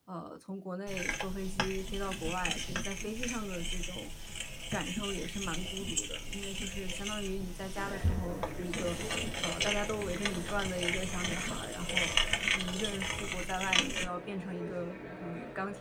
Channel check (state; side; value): identical; both; correlation 1.00